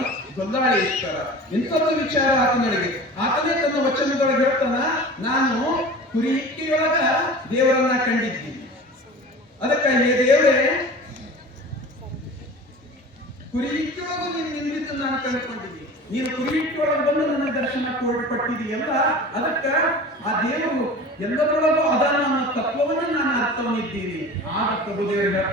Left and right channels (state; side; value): normal; both; correlation 0.38